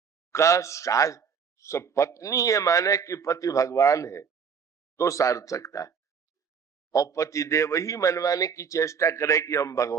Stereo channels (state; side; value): quieter; left; 6.4 dB